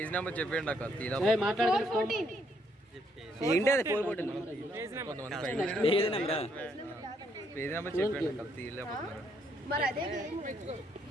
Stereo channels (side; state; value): both; normal; correlation 0.71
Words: number చెప్పండి అక్క తీరా మాట్లాడదు. 4:14. ఏంటి అది 4:14 కొంతమంది పేజ్ నెంబర్ చెప్పండి అక్క తీయలేకపోతున్నారు. మరి అదే గేమ్.